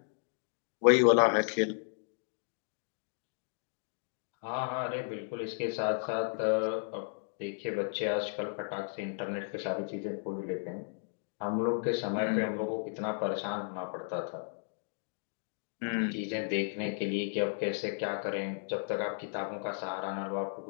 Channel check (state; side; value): silent; right; digital silence